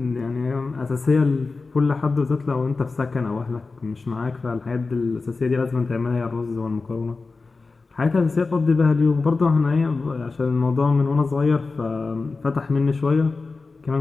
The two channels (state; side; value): quieter; right; 4.0 dB